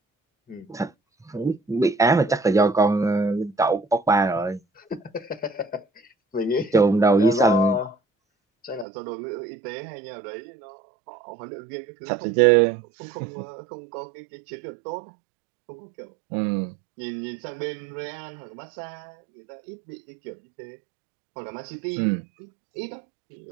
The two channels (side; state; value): left; drops out; at 8.8 s